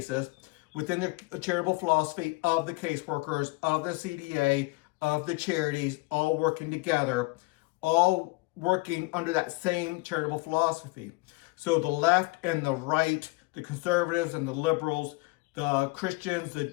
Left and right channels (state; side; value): quieter; right; 24.5 dB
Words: within the charitable philosophy of the caseworkers, of the CDA, of the charities, all working together, all working under that same charitable philosophy. So the left and the right, the conservatives and the liberals, the Christians,